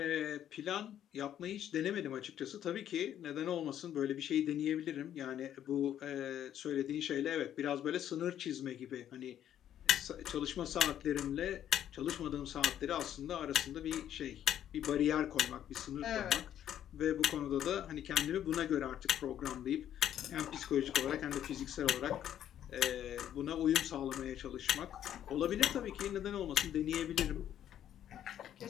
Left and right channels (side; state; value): right; quieter; 10.7 dB